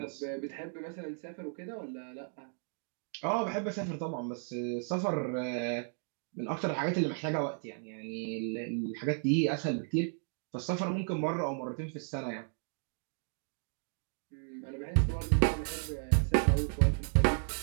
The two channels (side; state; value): left; silent; 55 dB below the other